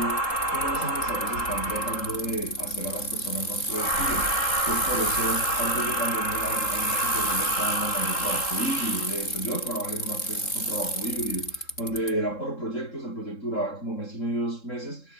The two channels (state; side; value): late; right; 3.7 ms